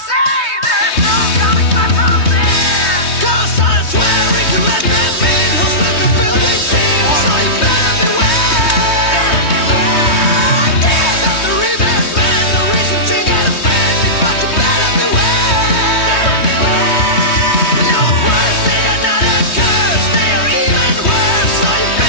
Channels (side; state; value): right; late; 3.2 ms